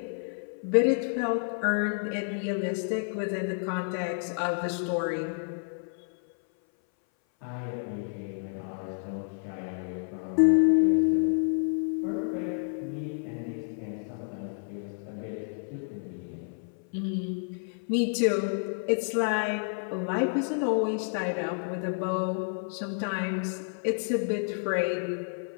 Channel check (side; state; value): right; silent; 58 dB below the other